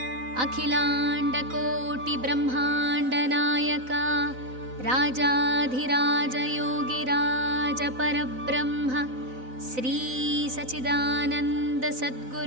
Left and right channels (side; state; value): left; late; 4.0 ms